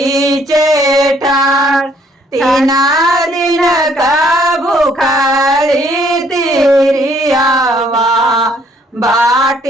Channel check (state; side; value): normal; both; correlation 0.65